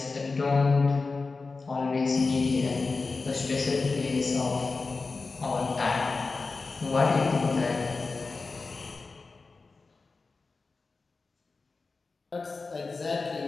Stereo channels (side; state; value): right; quieter; 4.0 dB